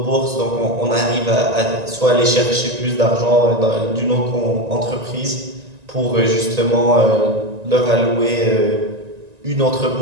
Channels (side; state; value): left; late; 1.9 ms